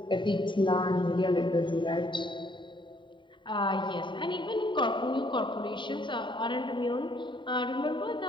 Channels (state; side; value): late; right; 0.23 ms